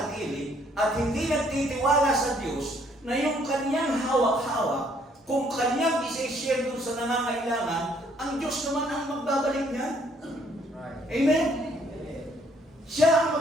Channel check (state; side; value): normal; both; correlation 0.65